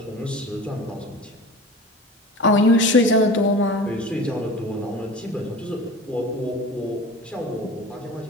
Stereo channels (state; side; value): normal; both; correlation 0.36